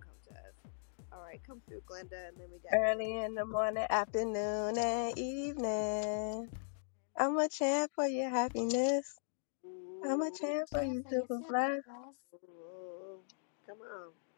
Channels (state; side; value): silent; right; digital silence